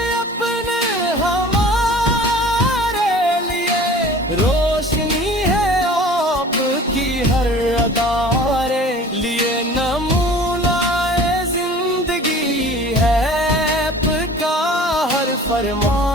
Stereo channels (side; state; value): both; normal; correlation 0.44